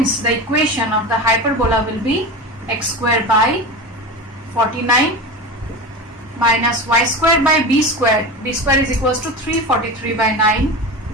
the equation of the hyperbola will be x square by 49 minus y square by b square. B square is equals to 343 by 9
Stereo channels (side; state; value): both; normal; correlation 0.27